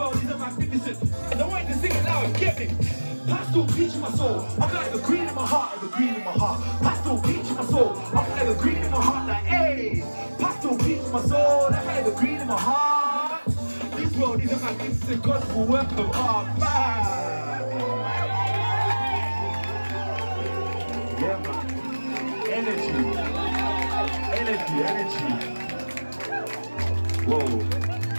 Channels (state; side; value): inverted; both; correlation -1.00